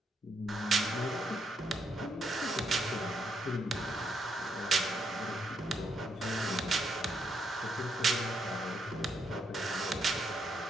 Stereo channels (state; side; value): normal; both; correlation 0.77